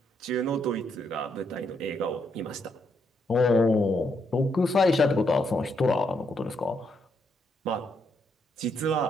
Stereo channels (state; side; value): normal; both; correlation 0.77